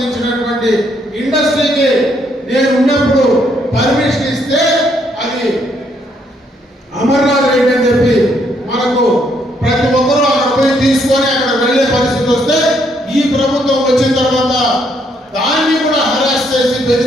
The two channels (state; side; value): normal; both; correlation 0.71